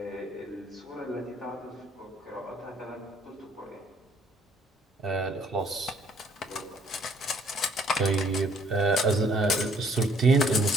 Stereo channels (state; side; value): normal; both; correlation 0.62